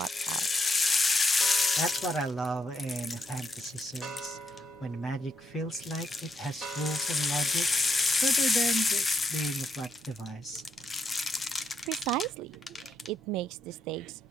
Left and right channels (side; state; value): both; normal; correlation 0.78